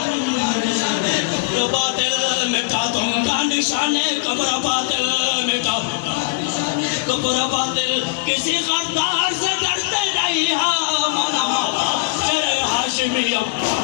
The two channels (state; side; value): quieter; right; 26.0 dB